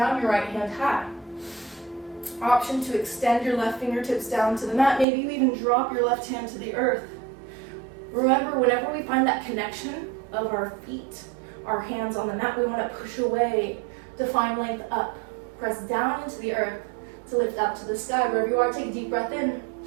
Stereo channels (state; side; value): drops out; left; at 5.1 s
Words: your right hand high. Option to extend your left fingertips down to the mat. Maybe you even drop your left hand to the earth. Remember, whenever we find that connection of our feet, our hands on the mat, we want to push away to find length up. Press down into the earth to lift up to the sky. Wherever you are, take a deep breath in.